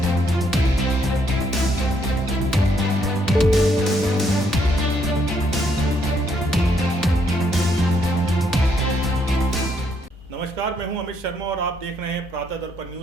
नमस्कार, मैं हूं अमित शर्मा और आप देख रहे हैं प्रातः दर्पण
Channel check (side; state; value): both; normal; correlation 0.72